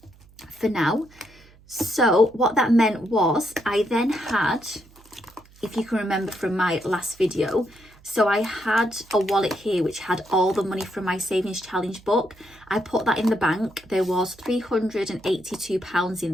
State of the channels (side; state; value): right; noise; hum, 26 dB below the sound